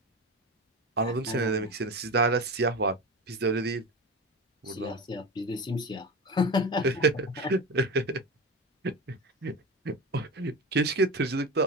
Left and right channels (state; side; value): normal; both; correlation 0.25